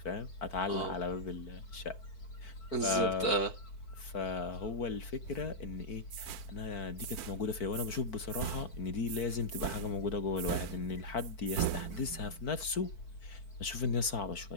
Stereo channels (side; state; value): right; late; 4.5 ms